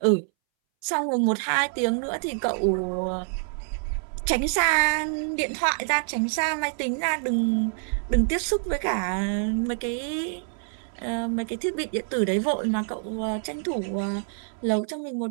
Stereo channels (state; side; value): silent; left; 61 dB below the other